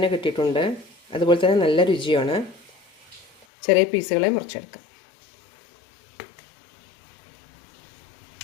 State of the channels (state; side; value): drops out; right; at 3.5 s